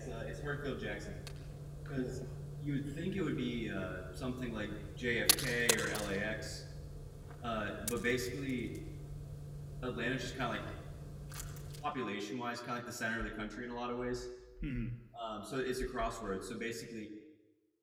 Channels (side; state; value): both; identical; correlation 1.00